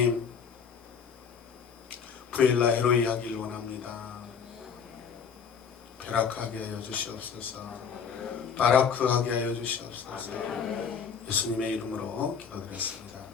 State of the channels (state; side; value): quieter; right; 6.7 dB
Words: 부엘라 헤로이 하길 원합니다. 베라크하게 하여 주시옵소서. 바라크하게 하여 주시옵소서. 예수님의 이름으로 기도드렸습니다.